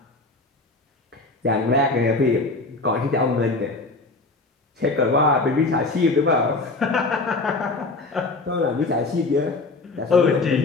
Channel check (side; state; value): right; quieter; 3.3 dB